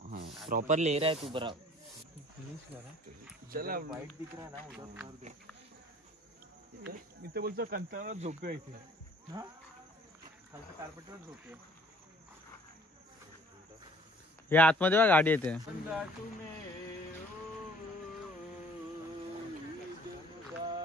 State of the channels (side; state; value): both; normal; correlation 0.54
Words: हाँ प्रॉपर ले रहा है तू बरा. चला वाईट दिख रहा ना उधर. इथे बोलतो कंटाळा झोपतोय इथे. हा खालच्या कार्पेटवर झोपतोय. हे आतमध्ये बघा गाडी येते.